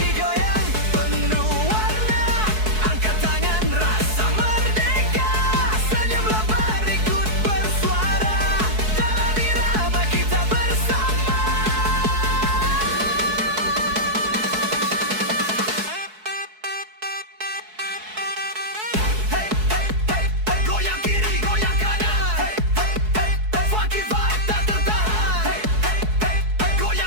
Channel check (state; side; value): late; left; 4.6 ms